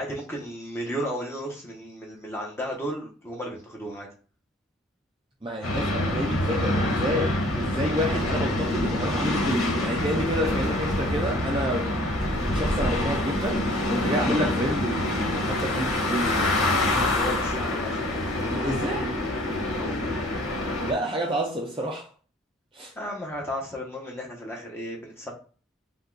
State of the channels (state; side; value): normal; both; correlation 0.53